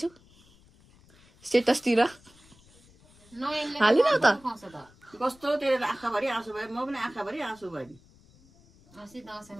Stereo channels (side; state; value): left; noise; rumble, 27 dB below the sound